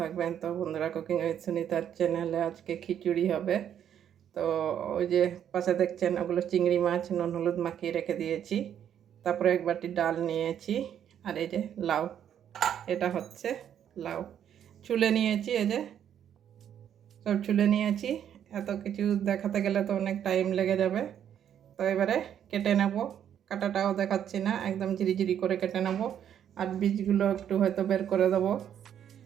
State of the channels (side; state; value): left; quieter; 9.5 dB